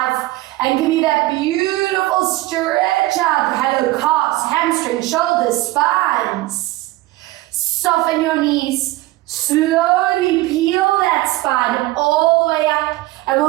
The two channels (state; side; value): quieter; left; 18.5 dB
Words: And give me that beautiful stretch out. Hello, calves, hamstrings, shoulders, spines. Soften your knees. Slowly peel that spine all the way up, and